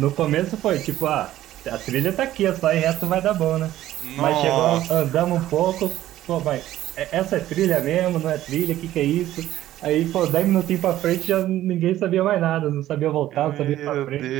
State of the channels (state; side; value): quieter; left; 13.7 dB